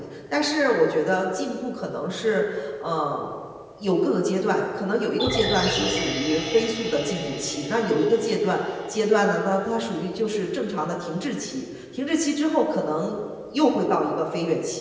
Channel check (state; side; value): identical; both; correlation 1.00